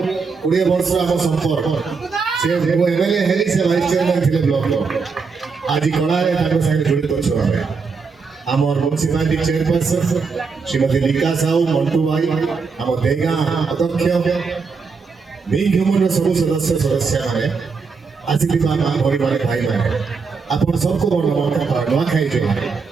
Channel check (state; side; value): quieter; left; 5.0 dB